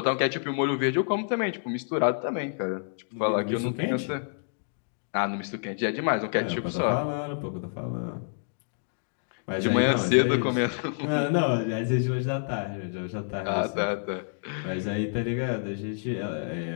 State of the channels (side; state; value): right; silent; digital silence